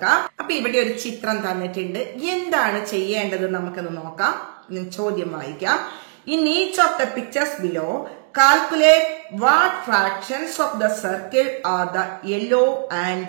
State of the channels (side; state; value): left; silent; digital silence